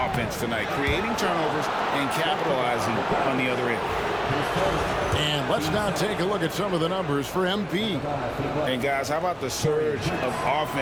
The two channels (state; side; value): identical; both; correlation 1.00